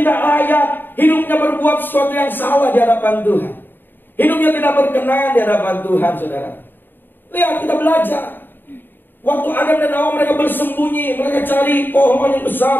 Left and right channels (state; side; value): late; right; 0.094 ms